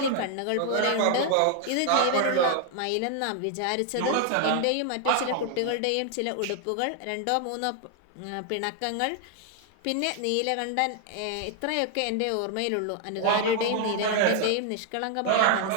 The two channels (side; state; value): both; different; correlation 0.00